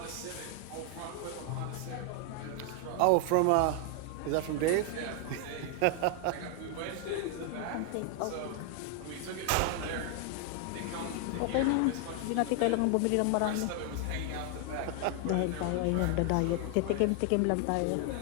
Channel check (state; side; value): different; both; correlation 0.00